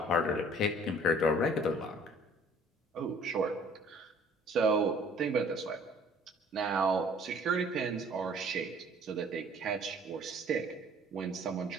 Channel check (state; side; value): normal; both; correlation 0.54